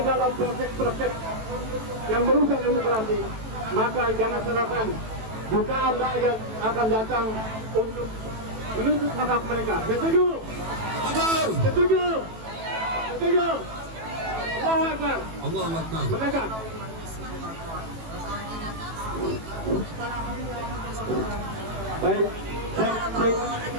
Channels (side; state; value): left; late; 18 ms